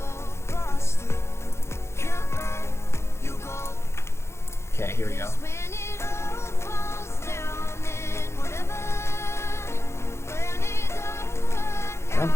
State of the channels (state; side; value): late; right; 0.13 ms